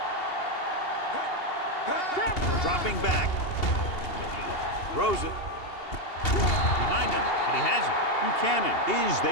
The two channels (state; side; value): late; right; 2.8 ms